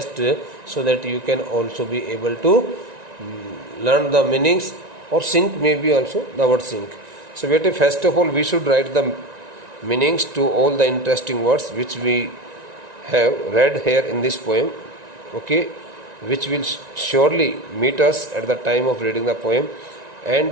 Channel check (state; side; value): late; left; 1.9 ms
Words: so that you can also be able to learn the meanings, or sync maybe also the word sync. So first of all we should write the meanings to all the interesting words which we have read here in this poem, okay, which will surely meet us at the time of reading the poem.